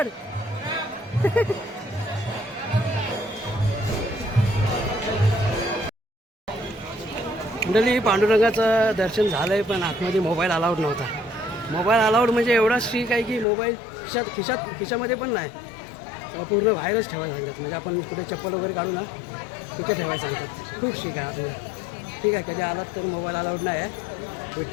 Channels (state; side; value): drops out; right; at 13.5 s